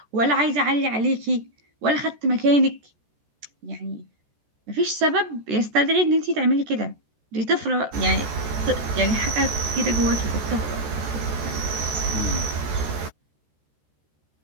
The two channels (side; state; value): left; late; 14 ms